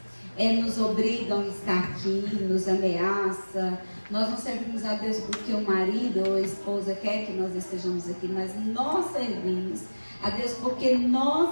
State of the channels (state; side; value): inverted; both; correlation -1.00